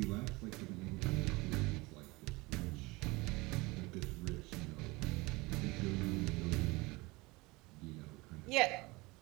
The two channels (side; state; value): left; quieter; 23.4 dB